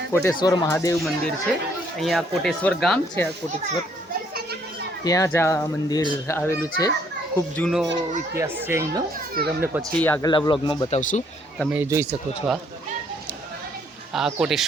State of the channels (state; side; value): normal; both; correlation 0.66